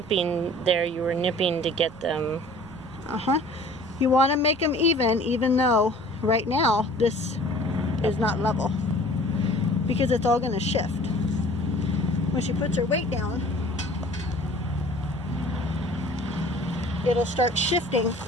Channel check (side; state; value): right; noise; rumble, 21 dB below the sound